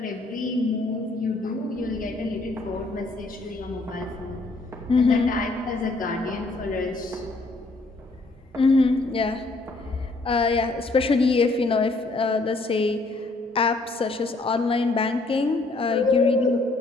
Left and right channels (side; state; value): right; quieter; 3.2 dB